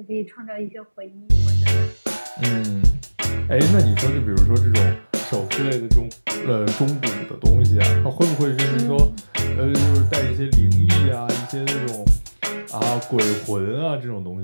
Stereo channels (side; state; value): both; inverted; correlation -1.00